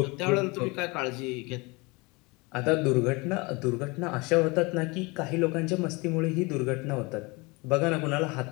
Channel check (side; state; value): right; quieter; 26.2 dB